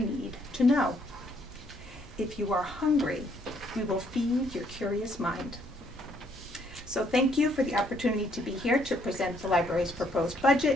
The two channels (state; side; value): normal; both; correlation 0.68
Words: to know. If you are hungry, we will feed your curious mind. So thank you for the opportunity to be here to present the library's proposed